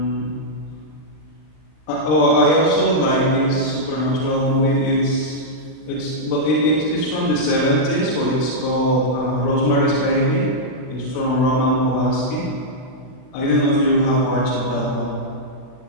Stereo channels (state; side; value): late; right; 39 ms